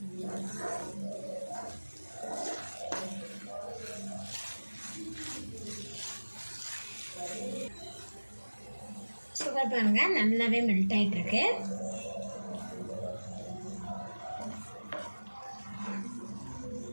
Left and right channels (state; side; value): inverted; both; correlation -1.00